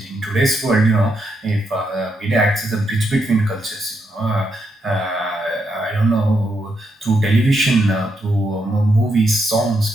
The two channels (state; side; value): normal; both; correlation 0.80